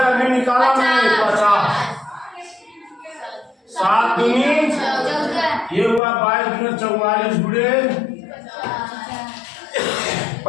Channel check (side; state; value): right; drops out; at 6.0 s